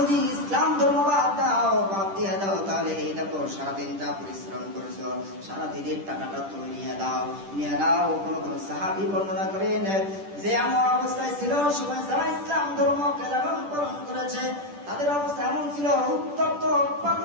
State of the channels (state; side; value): late; left; 10 ms